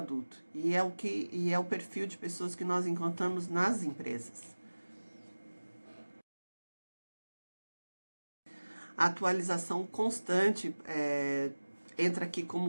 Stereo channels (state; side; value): inverted; both; correlation -1.00